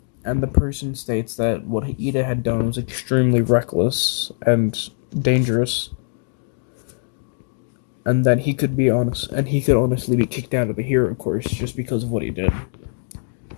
person states that what Ida had done was extremely reckless and dangerous, and that he could honestly be kicked out of the hero course just because of what he did.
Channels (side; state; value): right; silent; digital silence